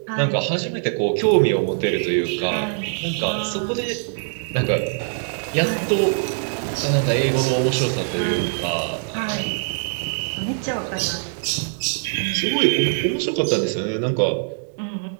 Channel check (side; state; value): left; silent; digital silence